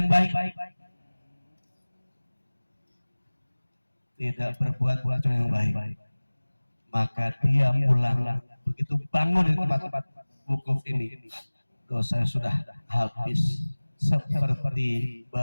baik, tidak berbuat kata yang baik. Maka dia pulang, begitu bangun di tempat-tempat wukuf ini, dosa sudah habis seperti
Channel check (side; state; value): both; inverted; correlation -1.00